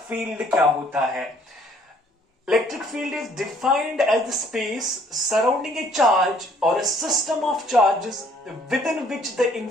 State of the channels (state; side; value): normal; both; correlation 0.61